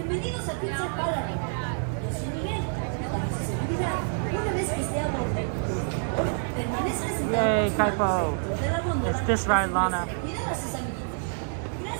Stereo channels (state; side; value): silent; left; 60 dB below the other